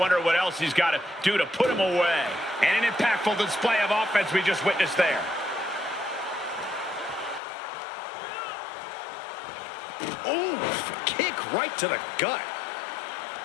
what else he's got to do to put him away. And an impactful display of offense we just witnessed there. Ooh, kick right to the gut.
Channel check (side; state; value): right; drops out; at 7.4 s